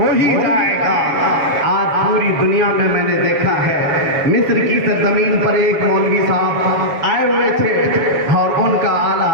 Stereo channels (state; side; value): late; left; 7.3 ms